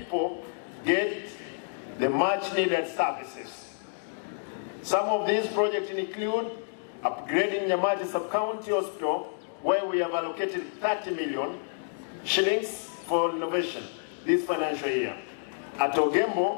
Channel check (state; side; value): silent; right; digital silence